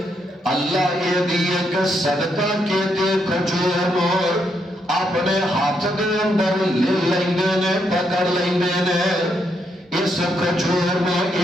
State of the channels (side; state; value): both; normal; correlation 0.77